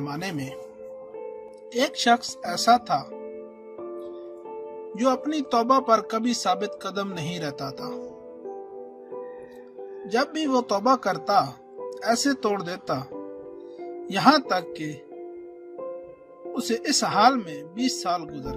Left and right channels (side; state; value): both; identical; correlation 1.00